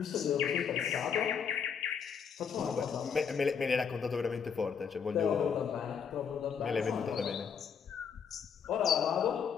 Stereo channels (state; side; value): quieter; right; 6.9 dB